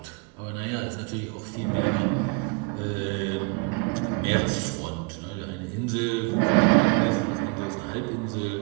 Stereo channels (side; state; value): left; quieter; 30.6 dB